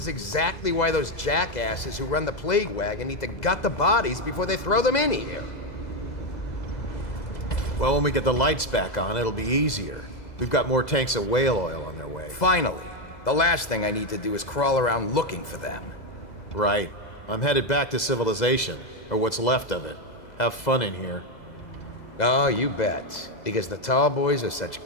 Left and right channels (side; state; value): right; late; 2.0 ms